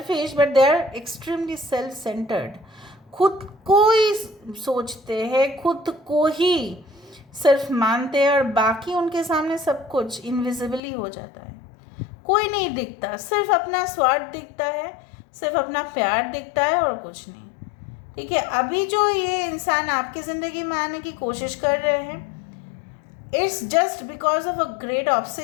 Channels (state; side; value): drops out; right; at 10.8 s